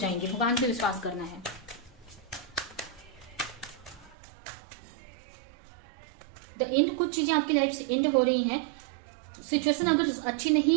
भगवान पे विश्वास करना है। द एंड, कुछ चीजें आपकी लाइफ से एंड हो रही हैं। सिचुएशन अगर अच्छी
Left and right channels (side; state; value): left; drops out; at 4.2 s